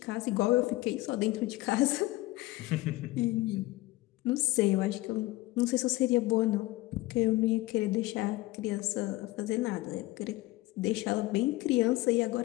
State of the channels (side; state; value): right; quieter; 18.9 dB